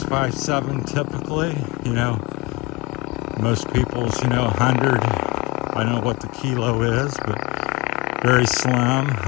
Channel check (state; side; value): quieter; right; 24.2 dB